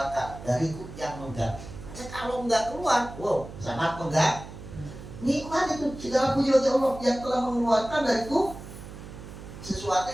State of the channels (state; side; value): noise; right; hum, 13 dB below the sound